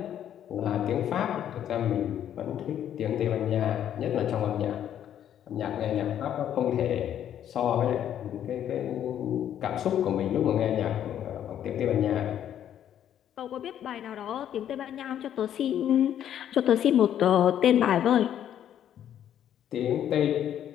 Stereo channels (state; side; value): quieter; right; 10.3 dB